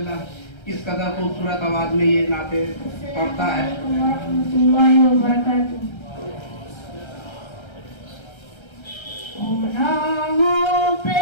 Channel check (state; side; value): late; right; 1.3 ms